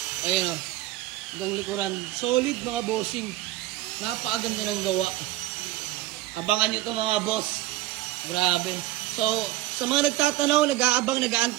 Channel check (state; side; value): quieter; left; 16.2 dB